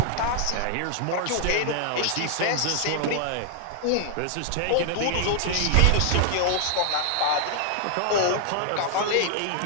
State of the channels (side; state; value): both; different; correlation 0.00